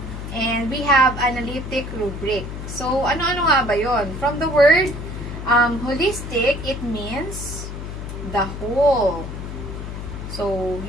and we have analytic rubric. So, ano-ano nga ba yon? From the word holistic, it means the whole. So,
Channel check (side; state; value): left; noise; hum, 8 dB below the sound